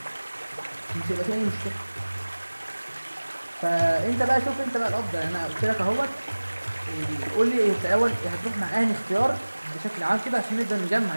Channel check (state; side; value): inverted; both; correlation -1.00